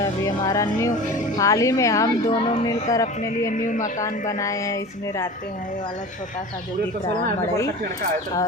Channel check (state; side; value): noise; left; hum, 29 dB below the sound